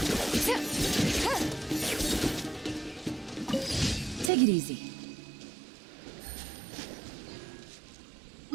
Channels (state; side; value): drops out; left; at 4.3 s